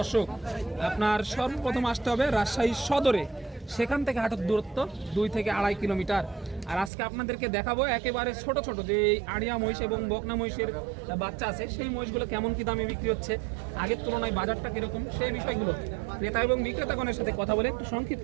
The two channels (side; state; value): left; drops out; at 6.9 s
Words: আপনার সর্বপ্রথম আসতে হবে রাজশাহী সদরে। সেখান থেকে হাটের দূরত্ব 2 থেকে 2.5 কিলোমিটার। আর আজকে আপনাদেরকে দেখাবো একেবারে ছোট ছোট যে আড়িয়া মহিষ এবং বকনা মহিষের বাচ্চা আছে, সেই মহিষগুলো কেমন কি দামে বিক্রি হচ্ছে, আগের তুলনায় বাজারটা কিরকম, সেই বিষয়গুলো ক্রেতা এবং বিক্রেতাগণের সাথে কথা বলে একটু